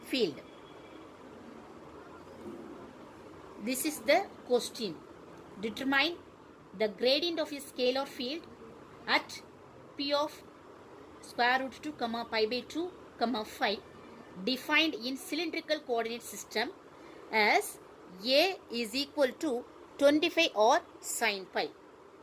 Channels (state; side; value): identical; both; correlation 1.00